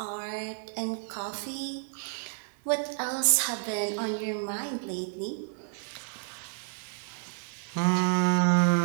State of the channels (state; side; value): silent; left; digital silence